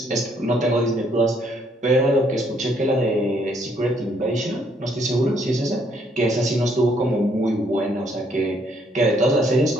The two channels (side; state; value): both; normal; correlation 0.69